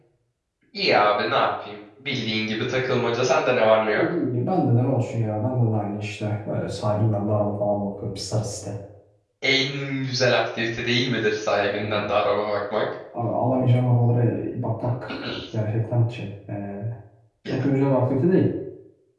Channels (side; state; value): both; identical; correlation 1.00